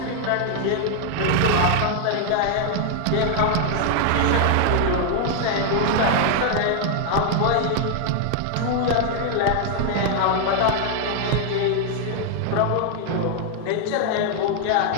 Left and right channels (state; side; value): different; both; correlation 0.00